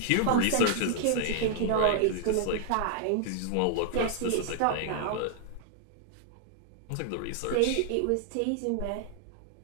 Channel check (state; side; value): different; both; correlation 0.00